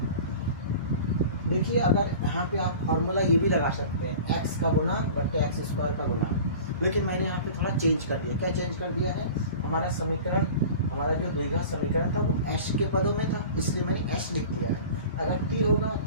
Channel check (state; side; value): inverted; both; correlation -0.39